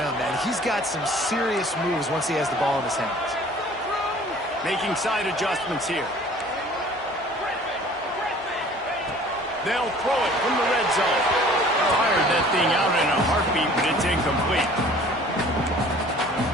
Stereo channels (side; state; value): both; normal; correlation 0.50